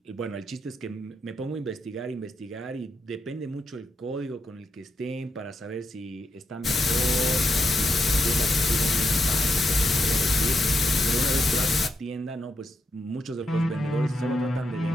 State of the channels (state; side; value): normal; both; correlation 0.83